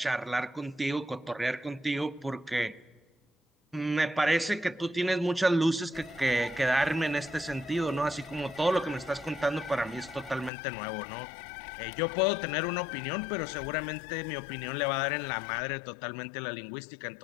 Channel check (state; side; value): drops out; right; at 10.5 s